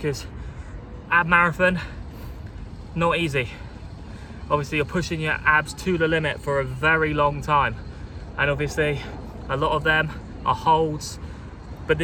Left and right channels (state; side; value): identical; both; correlation 1.00